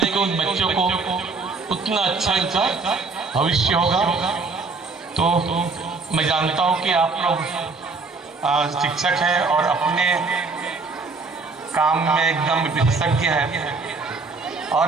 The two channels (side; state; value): left; quieter; 4.1 dB